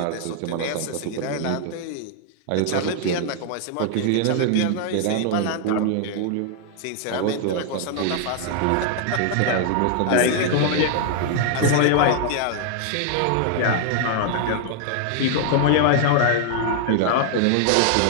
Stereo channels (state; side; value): different; both; correlation 0.00